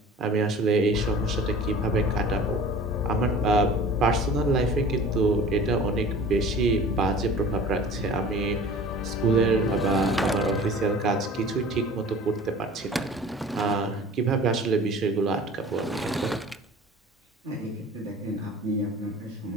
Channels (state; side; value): normal; both; correlation 0.43